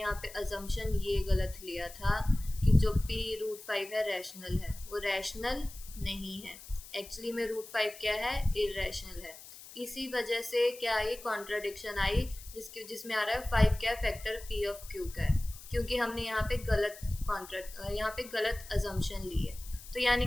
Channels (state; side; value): noise; left; hiss, 16 dB below the sound